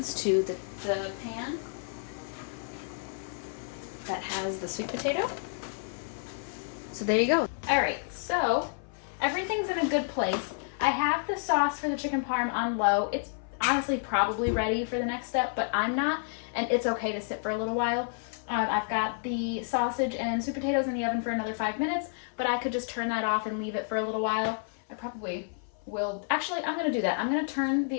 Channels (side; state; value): right; silent; 55 dB below the other